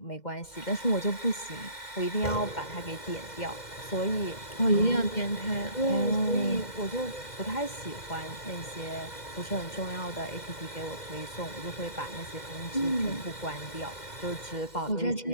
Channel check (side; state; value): right; late; 2.1 ms